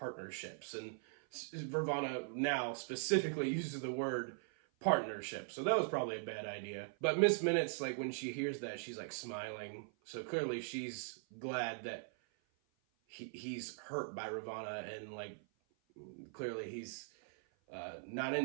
And Vervana now specifically uses the word partnership. So that was probably a bad idea. But Miss Minutes, like when she hears that, she's like smiling. So clearly she's glad that he's hurt by Ravana, and like clearly he's not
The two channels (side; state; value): left; silent; 51 dB below the other